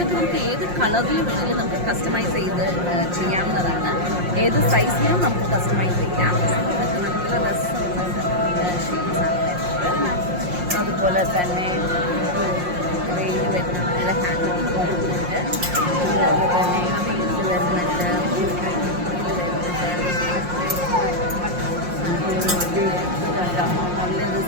നമുക്ക് ഏത് കളറിൽ വേണമെങ്കിലും നമുക്ക് കസ്റ്റമൈസ് ചെയ്ത് ചെയ്യാവുന്നതാണ്. ഏത് സൈസിലും നമുക്ക് കസ്റ്റമൈസ് ചെയ്യാം. ഇതൊക്കെ നല്ല രസമുള്ള ഷെയ്ഡ്സാണ് വരുന്നത്. അതുപോലെ തന്നെ വെയിൽ വരുന്ന നല്ല ഹാൻഡ് വർക്ക് വരുന്നുണ്ട്. അതുപോലെ തന്നെ ഫീൽഡ് വരുന്നുണ്ട്, നല്ലൊരു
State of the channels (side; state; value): left; late; 5.6 ms